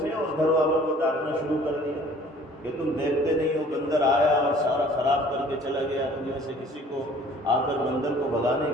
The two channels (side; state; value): both; normal; correlation 0.52